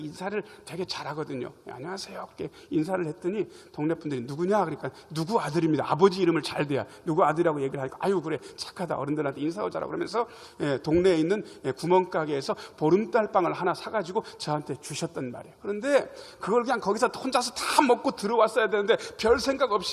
되게 잘하거든요. 안녕하세요 이렇게 인사를 했더니 동네 분들이 누구냐 그러니까 누구 아들입니다. 아버지 이름을 잘 대야 누구 아들이라고 얘기를 하니까 아유 그래 착하다 어른들한테 인사하고 자라고 그러면서 동네에 있는 구멍가게에서 보름달빵을 하나 사가지고 저한테 주셨단 말이에요. 그런데 그걸 그냥 거기서 혼자서 다 먹고 들어왔어야 되는데 별 생각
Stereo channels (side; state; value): both; identical; correlation 1.00